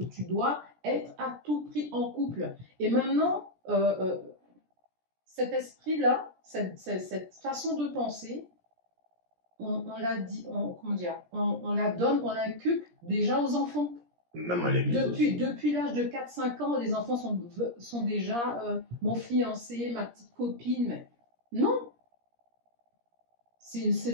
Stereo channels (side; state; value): left; late; 17 ms